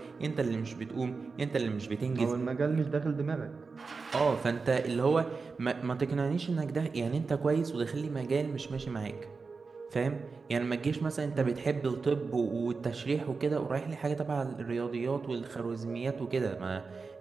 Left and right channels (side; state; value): left; quieter; 4.5 dB